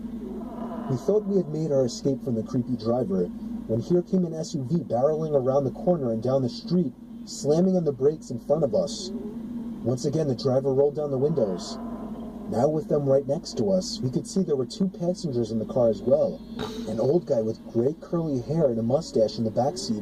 We thought we had made our escape from the creepy driver, when here came an SUV barreling around the corner and down the street, slamming on the brakes in front of us. Once again, the driver rolled down the windows. Now with them right next to us, we could see there were two passengers in the car as well. An old guy with gray curly hair and a mustache in the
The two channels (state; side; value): identical; both; correlation 1.00